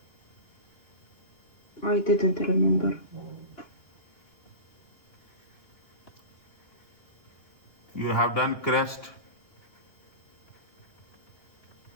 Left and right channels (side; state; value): right; late; 2.8 ms